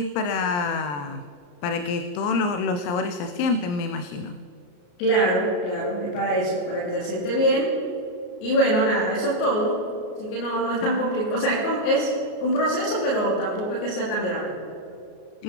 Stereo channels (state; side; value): late; right; 33 ms